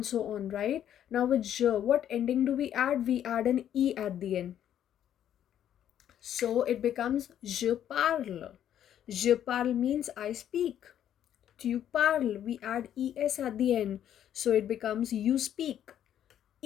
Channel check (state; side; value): quieter; right; 10.4 dB